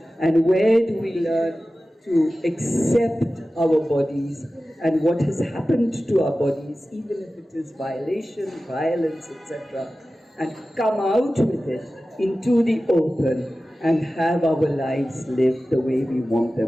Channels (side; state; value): both; normal; correlation 0.95